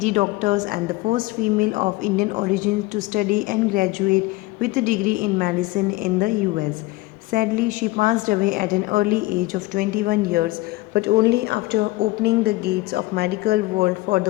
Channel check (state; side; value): quieter; right; 20.3 dB